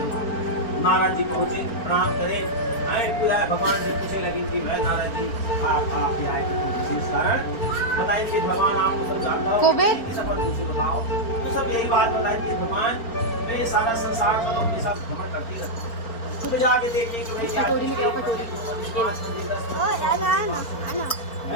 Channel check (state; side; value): late; right; 4.4 ms